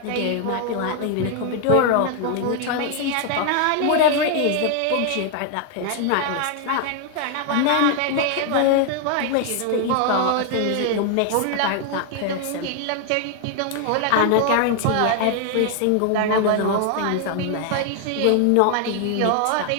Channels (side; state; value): both; different; correlation 0.00